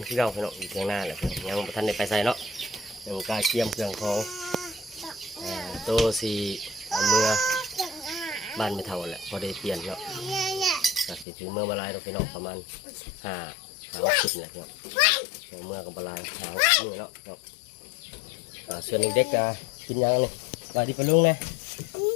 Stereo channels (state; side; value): drops out; right; at 11.2 s